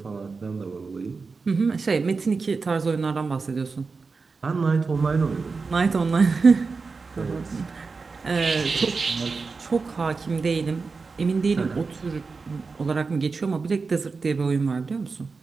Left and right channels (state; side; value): quieter; left; 4.5 dB